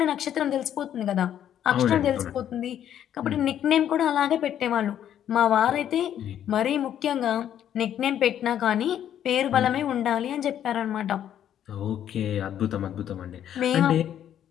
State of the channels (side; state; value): right; quieter; 10.3 dB